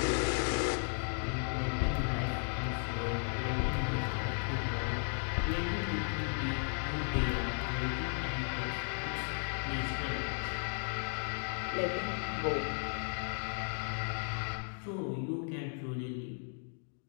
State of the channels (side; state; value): right; silent; 54 dB below the other